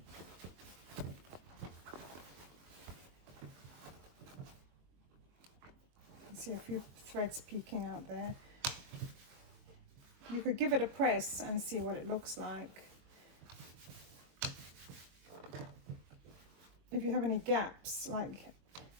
See a few threads peeking out there. You could give it a press and see what it looks like. If you have any gaps, like,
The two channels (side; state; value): left; late; 22 ms